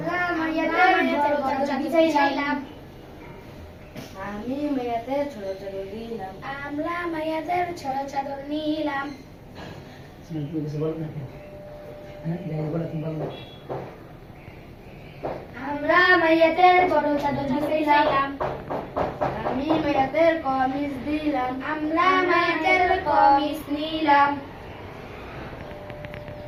আমরা মেয়েদের বড় চাদর বিছাইলাম, আমি মেয়েদের ছোট চাদর দিলাম, আমরা মেয়েদের ছোট চাদর নিলাম। তুমি কিছু বলো না কেন? হ্যাঁ যাই বলো তুমি বলো। আমরা মেয়েদের বড় চাদর বিছাইলাম, আমি মেয়েদের কমিজ দিলাম, আমরা মেয়েদের কমিজ নিলাম।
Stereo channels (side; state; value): both; identical; correlation 1.00